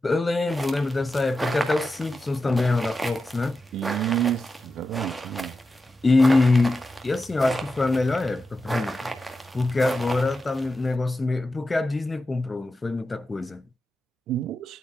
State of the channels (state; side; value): normal; both; correlation 0.90